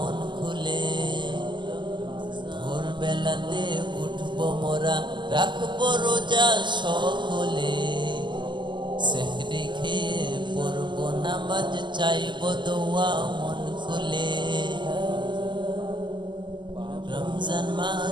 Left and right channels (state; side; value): late; left; 0.22 ms